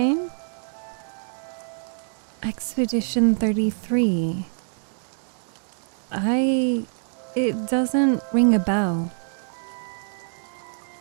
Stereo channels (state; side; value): silent; left; digital silence